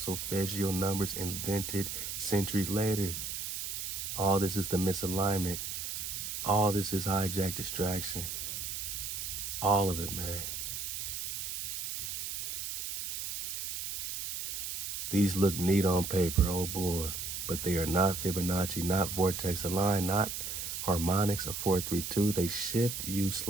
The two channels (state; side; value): noise; right; hiss, 4 dB below the sound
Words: solfeggio numbers invented centuries later. All this is the misalignment. All this is hijack distraction. All of it, man. These look neat on paper, oh boy, but they are not Fibonacci, not vortex aligned, not harmonics of 432. They shift you